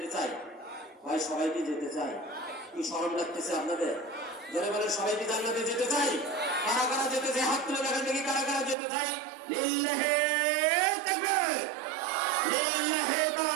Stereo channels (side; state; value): left; drops out; at 8.8 s